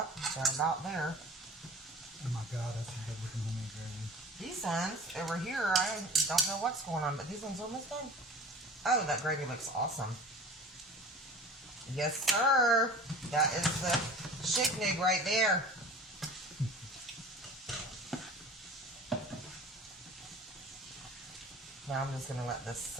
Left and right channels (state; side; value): normal; both; correlation 0.41